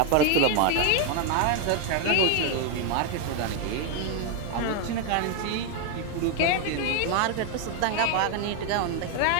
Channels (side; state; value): both; different; correlation 0.00